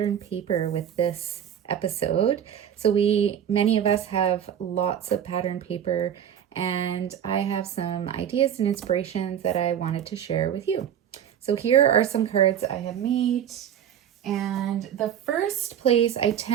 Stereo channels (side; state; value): left; quieter; 9.5 dB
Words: paper with this episode. So many of us have lots of pattern paper, and I have some ideas and inspirations that I wanted to share with you. So here are some cards I have made. And the first place I